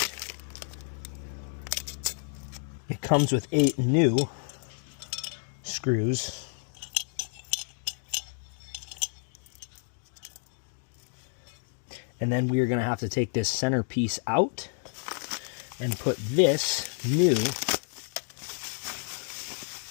It comes with 8 new screws. And then we are going to have to take this center piece out and put this new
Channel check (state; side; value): silent; right; 58 dB below the other